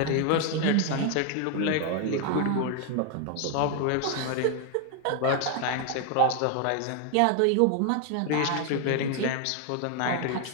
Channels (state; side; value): different; both; correlation 0.00